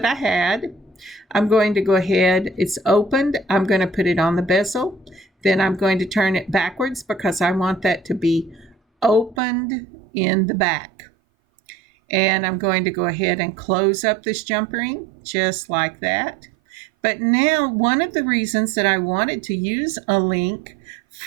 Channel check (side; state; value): left; drops out; at 9.4 s